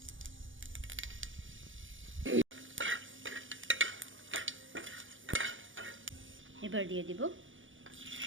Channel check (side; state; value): left; late; 0.57 ms